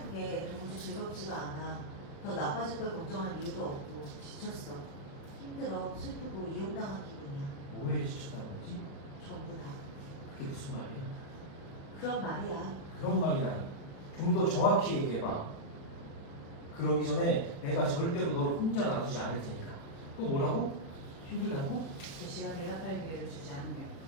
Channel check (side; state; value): right; late; 36 ms